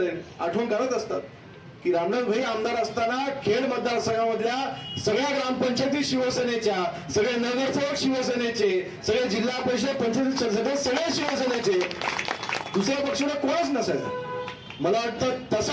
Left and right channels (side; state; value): both; identical; correlation 1.00